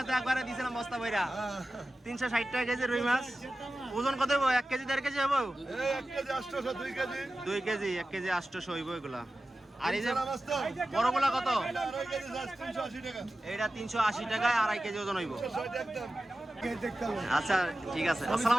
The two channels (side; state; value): both; normal; correlation 0.94